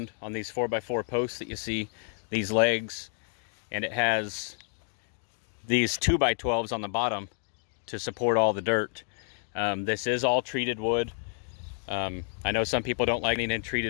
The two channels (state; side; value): silent; right; 58 dB below the other